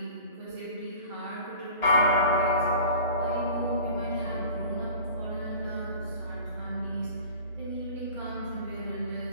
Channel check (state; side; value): inverted; both; correlation -0.41